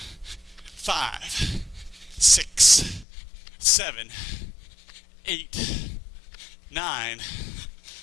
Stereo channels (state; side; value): drops out; right; at 3.1 s